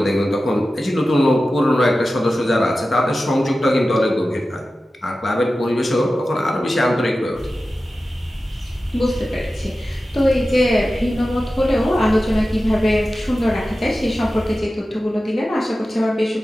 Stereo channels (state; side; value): normal; both; correlation 0.94